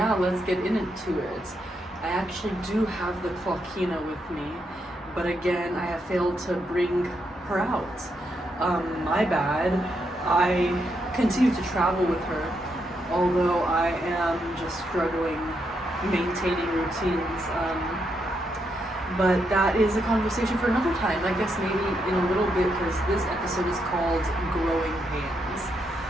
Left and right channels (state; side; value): normal; both; correlation 0.80